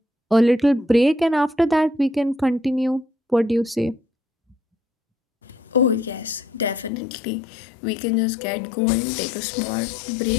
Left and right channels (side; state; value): right; drops out; at 6.9 s